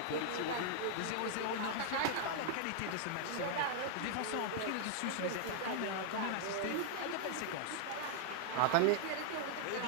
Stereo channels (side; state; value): both; different; correlation 0.00